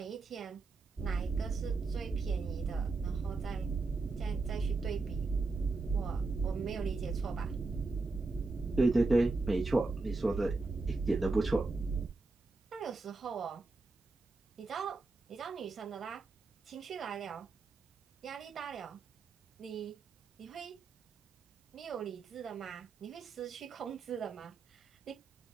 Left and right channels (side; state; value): left; quieter; 3.8 dB